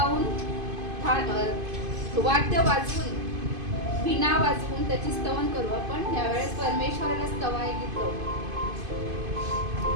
वाद्य वाजवून, वीणा वाजवून त्याची स्तवन करू. आपण यावेळेस परमेश्वराला स्तवाय गीत गाऊ.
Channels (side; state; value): left; late; 2.5 ms